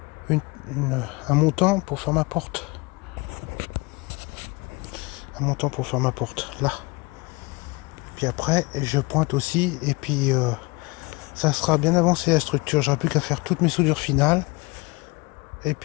un montant pour faire ma porte. Un montant pour faire ma porte, là. Puis après, je pointe aussi, et puis ça sera bien avancé la structure. J'aurai plus qu'à faire toutes mes soudures finales. Et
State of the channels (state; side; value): quieter; right; 26.1 dB